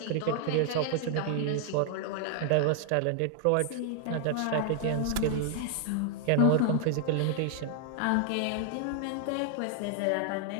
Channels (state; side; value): different; both; correlation 0.00